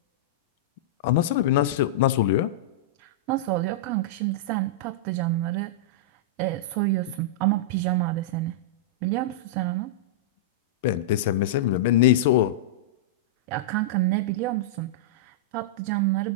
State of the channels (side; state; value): both; normal; correlation -0.12